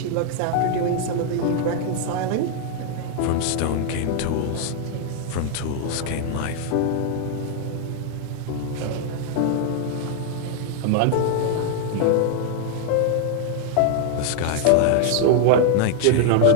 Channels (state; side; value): different; both; correlation 0.00